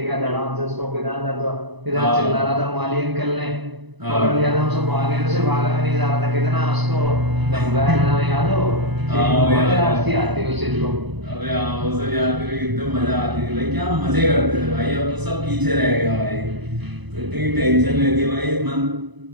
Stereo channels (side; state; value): left; late; 1.0 ms